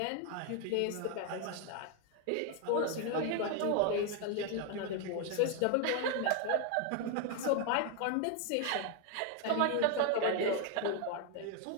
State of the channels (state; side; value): different; both; correlation 0.00